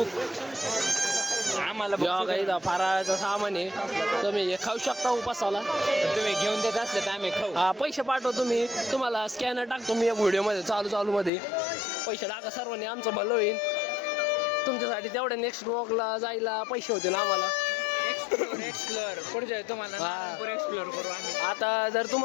आम्हाला काही फराळाचं सामान आहे तुम्ही हे खाऊ शकता उपासाला तुम्ही घेऊन देत असले तर आम्ही खाऊ हा पैसे पाठवतो मी तुम्हाला स्कॅनर टाकतो मी या व्हिडिओमध्ये चालू मध्ये पैसे टाका सर्वांनी आमचं भलं होईल तुमच्यासाठी तेवढ्या नेक्स्ट ब्लॉगला जायला पैसे होतील आम्हाला एक्सप्लोर पुढच्या तुम्हाला एक्सप्लोर करू आम्ही आता जर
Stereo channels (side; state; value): right; drops out; at 11.3 s